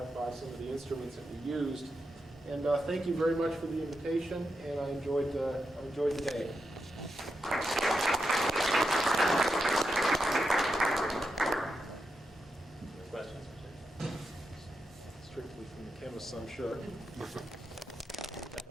by some of the instruments that we used. And thank you very much for the invitation, and I enjoyed the day. Questions? Strictly from the chemists, I'm sure.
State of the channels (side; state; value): both; normal; correlation 0.87